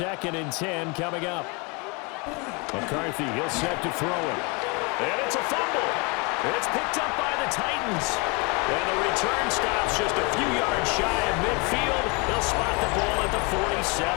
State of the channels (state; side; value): quieter; right; 30.2 dB